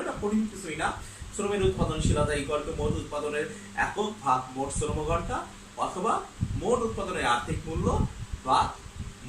এটা কঠিন কিছুই না। শ্রমের উৎপাদনশীলতা ইকুয়াল টু মোট উৎপাদনের একক ভাগ মোট শ্রম ঘন্টা, অথবা মোট উৎপাদনের আর্থিক মূল্য বা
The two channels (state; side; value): identical; both; correlation 1.00